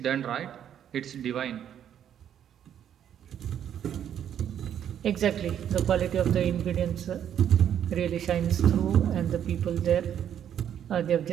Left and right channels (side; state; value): left; quieter; 9.7 dB